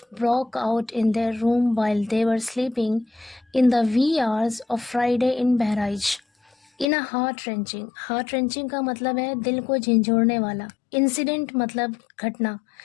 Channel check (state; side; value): drops out; right; at 6.9 s